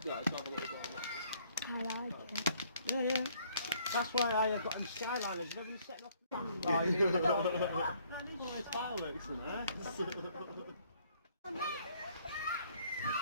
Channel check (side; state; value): both; inverted; correlation -0.63